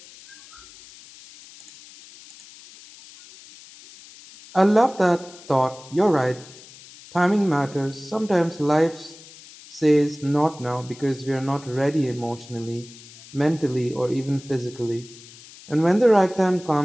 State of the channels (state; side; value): noise; left; hiss, 20 dB below the sound